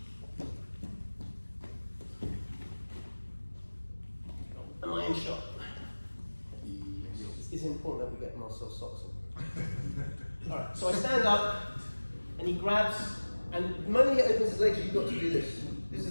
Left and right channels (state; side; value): inverted; both; correlation -1.00